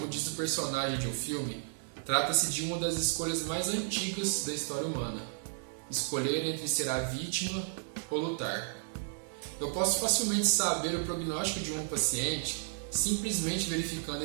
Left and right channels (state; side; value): silent; left; digital silence